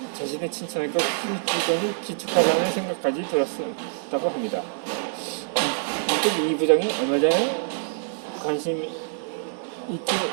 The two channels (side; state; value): left; silent; digital silence